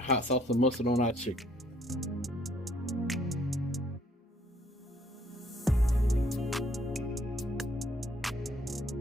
sauce and mustard on our chicken.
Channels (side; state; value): both; normal; correlation 0.65